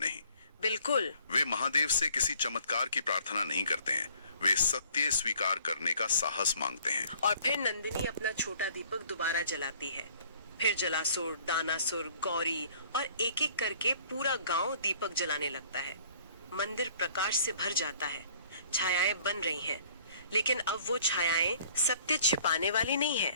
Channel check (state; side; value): inverted; both; correlation -0.56